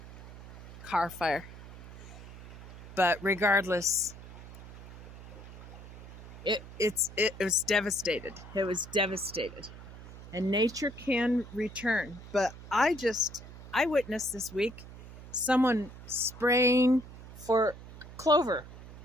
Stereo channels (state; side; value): noise; right; hum, 15 dB below the sound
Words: car fire. But regardless, it was devastated. It was devastated. And nature can return. But I witnessed this week someone spraying for clover.